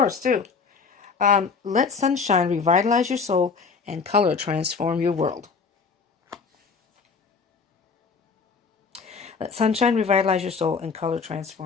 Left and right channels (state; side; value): quieter; right; 5.3 dB